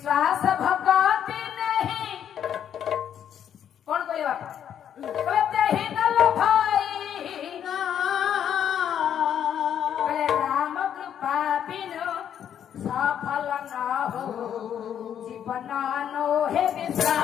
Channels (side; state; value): right; quieter; 9.3 dB